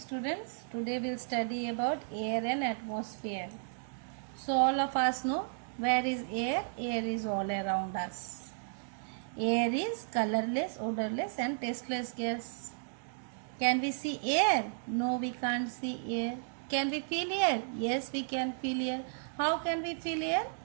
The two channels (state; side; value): silent; left; digital silence